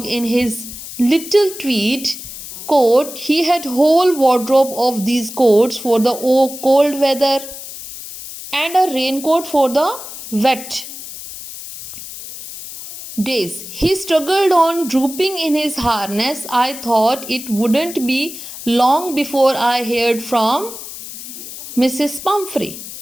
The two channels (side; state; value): left; noise; hiss, 12 dB below the sound